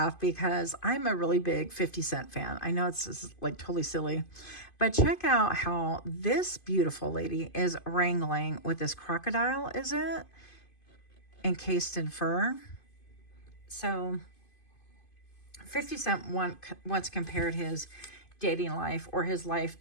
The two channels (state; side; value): late; right; 2.5 ms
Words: because I'm a really big 50 Cent fan. I know it's like totally silly, but check out how this beautiful lady is wrangling with this crocodile, is it? Encased in fur. So 50 Cent once compared his dating life, or his life